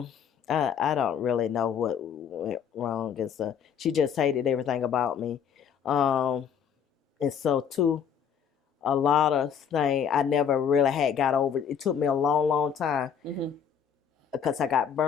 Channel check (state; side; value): quieter; right; 7.6 dB